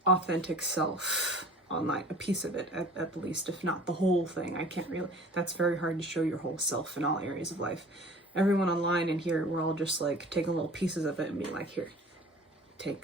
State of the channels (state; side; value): normal; both; correlation 0.45